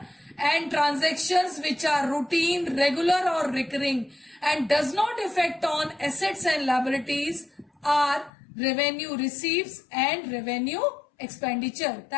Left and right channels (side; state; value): right; drops out; at 8.3 s